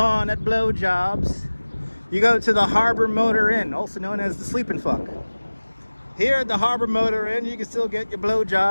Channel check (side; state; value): both; inverted; correlation -1.00